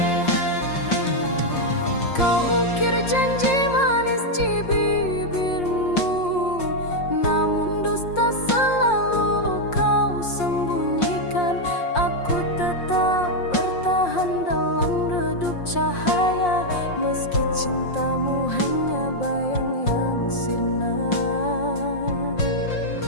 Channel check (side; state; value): right; late; 5.6 ms